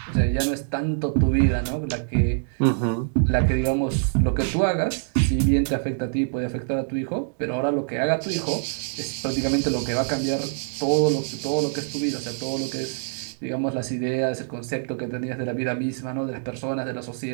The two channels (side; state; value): left; silent; 62 dB below the other